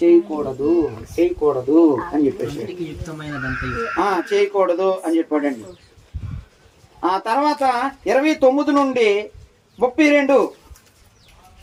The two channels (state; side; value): identical; both; correlation 1.00